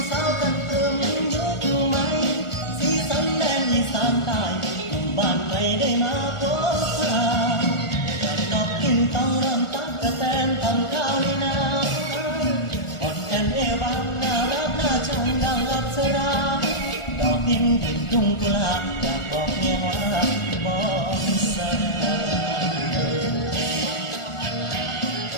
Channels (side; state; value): right; late; 1.4 ms